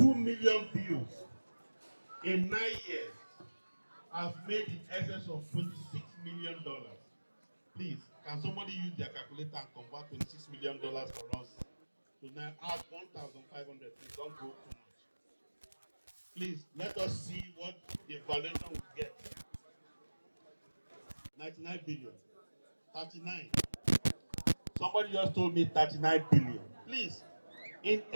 million views in 9 years has made in excess of $26 million. Please, can somebody use their calculator and convert $26 million for us? So now add 1,500. Please don't go too much. Please, let us see what the valuation will get. 99 billion. 39. Somebody just told me 39 billion. Please, in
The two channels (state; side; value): inverted; both; correlation -1.00